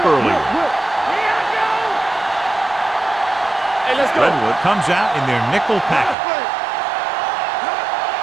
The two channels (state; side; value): drops out; left; at 6.2 s